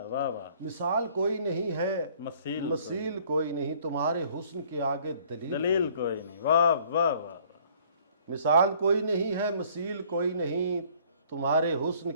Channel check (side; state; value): both; inverted; correlation -0.58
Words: واہ مثال کوئی نہیں ہے، مسیل مثیل کوئی نہیں، تمہارے حسن کے آگے دلیل دلیل کوئی نہیں، واہ واہ واہ مثال کوئی نہیں ہے، مثیل کوئی نہیں، تمہارے حسن